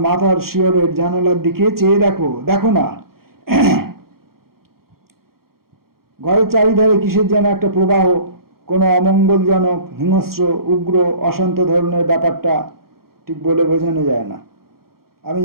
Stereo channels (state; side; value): late; left; 0.94 ms